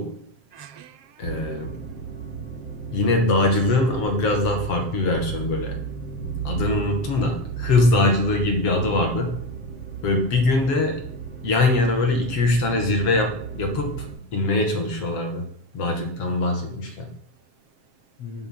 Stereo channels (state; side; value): late; right; 7.6 ms